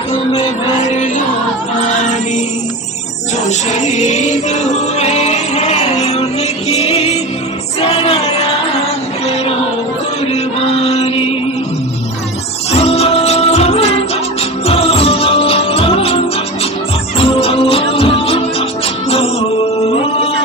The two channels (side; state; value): both; normal; correlation 0.27